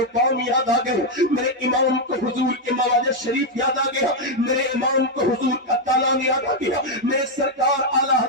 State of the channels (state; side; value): normal; both; correlation 0.01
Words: یاد آ گئے، میرے امام کو حضور کے مواجہ شریف یاد آ گیا، میرے امام کو حضور کا تالان یاد آ گیا، میرے سرکار اعلیٰ